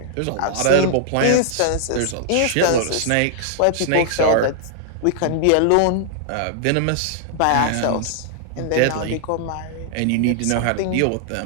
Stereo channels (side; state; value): both; different; correlation -0.01